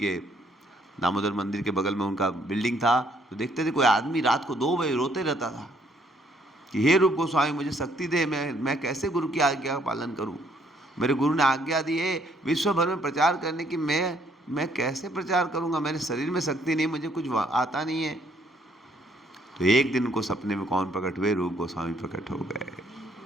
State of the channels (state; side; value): normal; both; correlation 0.67